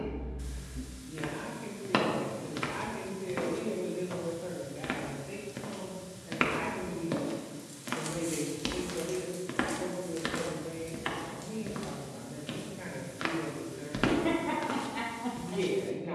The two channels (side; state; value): both; identical; correlation 1.00